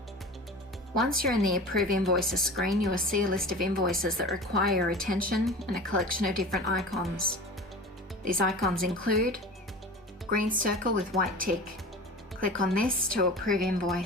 Once you're in the Approve Invoices screen, you will see a list of invoices that require your attention and a collection of different icons. These icons include green circle with white tick. Click on this to approve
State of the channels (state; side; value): normal; both; correlation 0.36